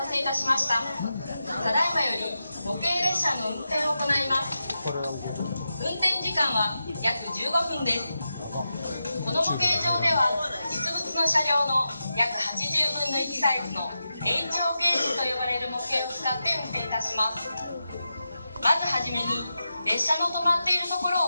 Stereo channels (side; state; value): both; inverted; correlation -0.89